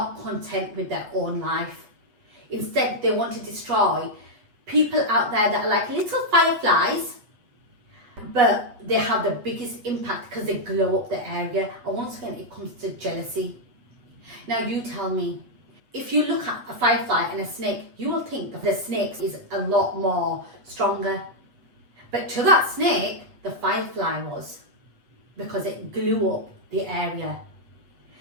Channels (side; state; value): left; late; 8.2 ms